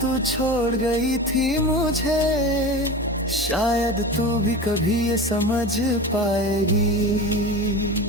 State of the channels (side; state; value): both; normal; correlation 0.30